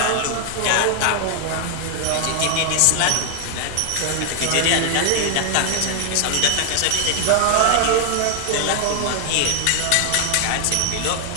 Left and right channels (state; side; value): different; both; correlation 0.00